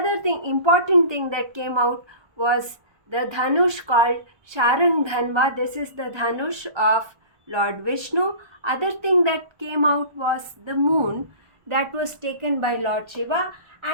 thing, important thing that came out was the dhanush called Sharang Dhanva. This is the dhanush of Lord Vishnu. Other thing that came out was the moon, that was taken by Lord Shiva.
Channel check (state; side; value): late; left; 1.2 ms